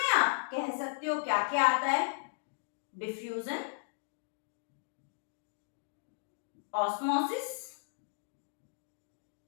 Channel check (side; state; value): right; silent; digital silence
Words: आप कह सकते हो क्या क्या आता है? डिफ्यूजन, ऑस्मोसिस